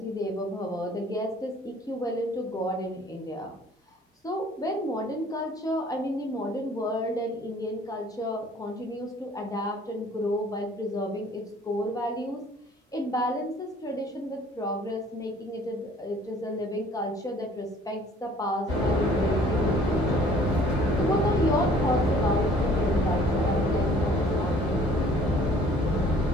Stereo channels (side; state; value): both; normal; correlation 0.54